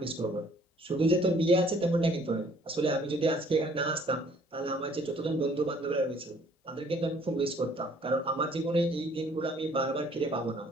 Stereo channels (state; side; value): normal; both; correlation 0.59